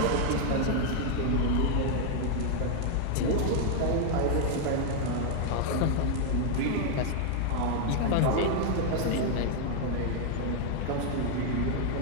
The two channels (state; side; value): different; both; correlation 0.00